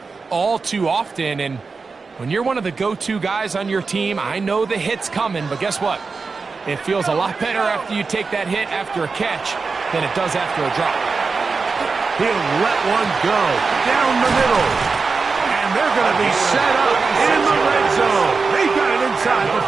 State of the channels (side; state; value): left; quieter; 4.5 dB